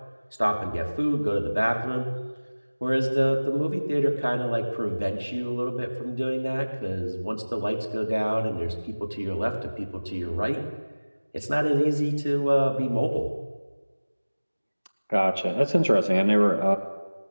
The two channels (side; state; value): both; inverted; correlation -1.00